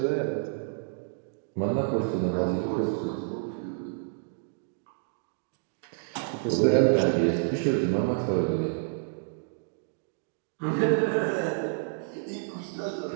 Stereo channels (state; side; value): silent; left; digital silence